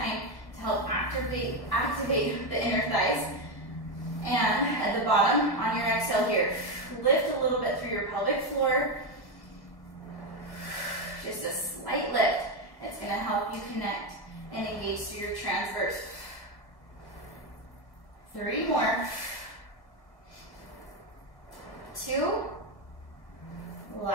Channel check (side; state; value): right; late; 1.7 ms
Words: to help activate the inner thighs. And at the bottom, on your exhale here, lift a little bit through your pelvic floor. Just a slight lift. It's going to help you connect and engage through your transverse. 3 more. 2.